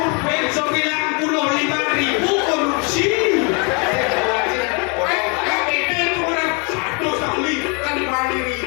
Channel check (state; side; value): quieter; right; 33.6 dB